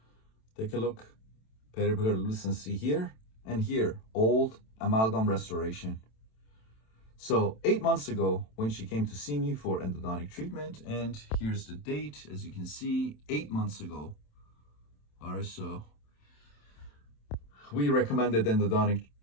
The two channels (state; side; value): late; right; 27 ms